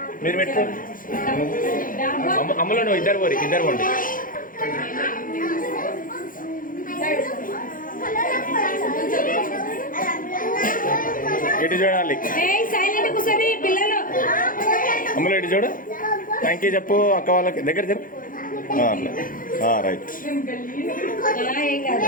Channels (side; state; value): right; late; 0.40 ms